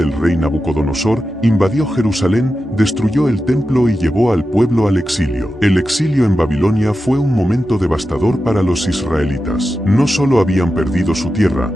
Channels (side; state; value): both; normal; correlation 0.91